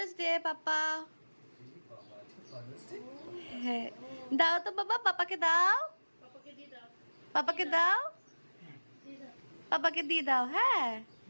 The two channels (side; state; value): both; inverted; correlation -1.00